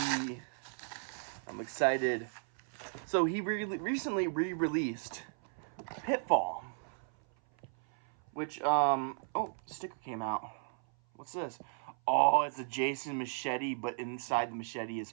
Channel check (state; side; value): silent; left; 54 dB below the other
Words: I'm excited. So he recently re-released Pitfall, which oh, sticker came out. What's this? Oh, it's a Jason machete, but inside the machete is